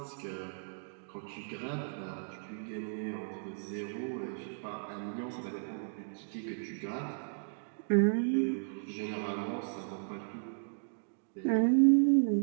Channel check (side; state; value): left; silent; digital silence